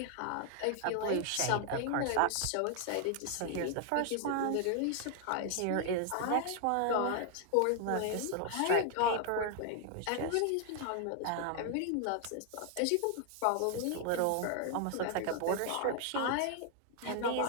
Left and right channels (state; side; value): different; both; correlation 0.00